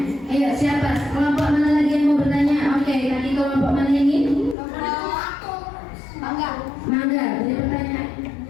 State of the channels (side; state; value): right; drops out; at 4.5 s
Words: Ayo siapa? Kelompok mana lagi yang mau bertanya? Oke, tadi kelompok mana ini? Mangga, beri pertanyaan.